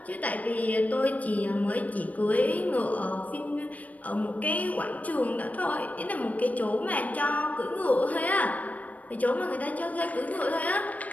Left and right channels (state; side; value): late; right; 0.072 ms